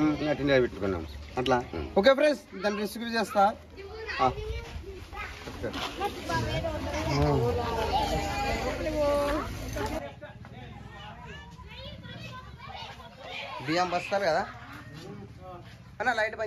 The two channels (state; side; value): identical; both; correlation 1.00